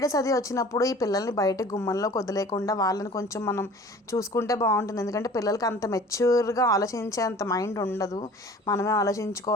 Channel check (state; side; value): normal; both; correlation 0.46